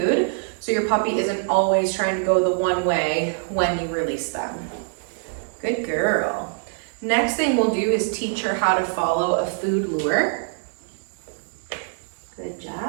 so your puppy isn't always trying to go the one way when you release them. Good girl. Next thing we'll do is teach her how to follow a food lure. Good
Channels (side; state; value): left; silent; digital silence